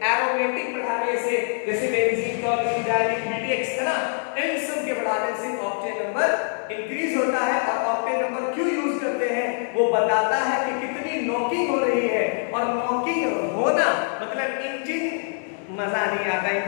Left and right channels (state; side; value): silent; right; 62 dB below the other